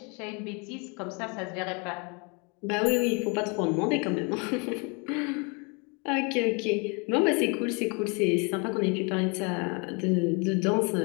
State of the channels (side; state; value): right; quieter; 32.4 dB